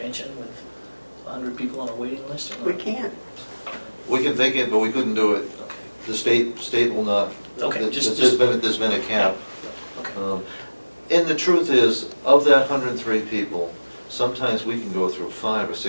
with 100 people on a waiting list or We not? can't. We can think it, but we couldn't do it. Okay. The state will not. Okay, There's been a cap. Okay. And the truth is, of that 103 people, sometimes we can go through 5 or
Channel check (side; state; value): both; inverted; correlation -1.00